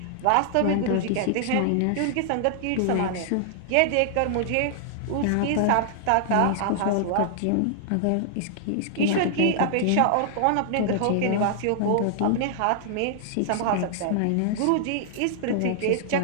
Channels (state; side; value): different; both; correlation -0.01